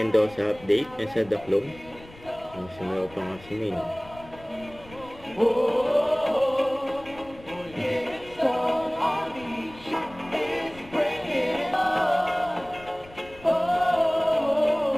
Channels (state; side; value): noise; left; rumble, 21 dB below the sound